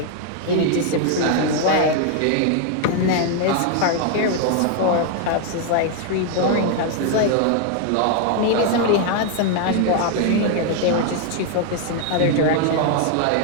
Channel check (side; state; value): both; different; correlation 0.00